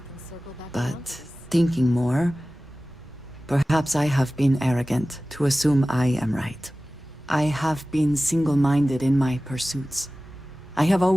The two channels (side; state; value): both; normal; correlation 0.97